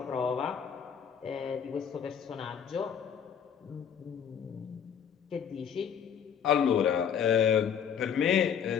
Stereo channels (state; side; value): quieter; right; 7.8 dB